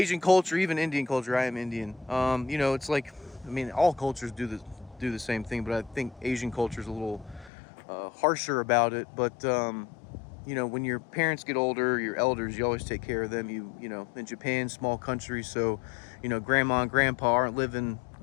culture, even Indian culture, I am Indian. You know, it's like, I mean, all cultures do the same thing, but I think Asian culture is a little harsher about it. But you know, when your parents get older, your elders, you always take care of them. You know, in Japan, small country, so you know, grandma and grandpa aren't living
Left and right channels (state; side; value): drops out; right; at 7.5 s